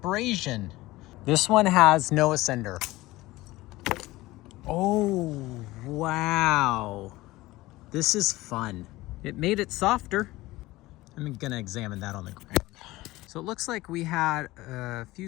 This one has no ascender. Oh, wow. This is fun. It made it softer. I'm gonna examine that on the ground. So it looks like we had a few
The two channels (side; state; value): right; quieter; 18.7 dB